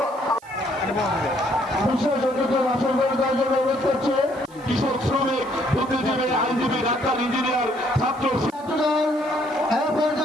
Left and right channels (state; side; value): noise; right; hiss, 27 dB below the sound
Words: কৃষক, শ্রমিক, বুদ্ধিজীবী, আইনজীবী, ডাক্তার, ইঞ্জিনিয়ার, ছাত্র